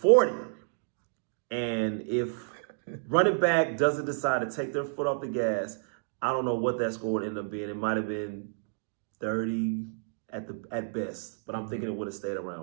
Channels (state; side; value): silent; left; digital silence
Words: And if running back doesn't decide to take their foot off the gas, I don't know what that score would end up being. It might have been 30 at best, but I'm thinking it would have stayed